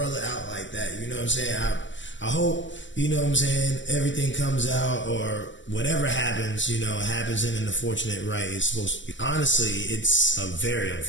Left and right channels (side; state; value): right; late; 0.54 ms